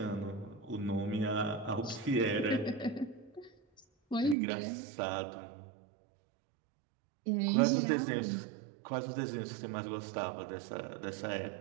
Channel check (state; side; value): drops out; left; at 4.4 s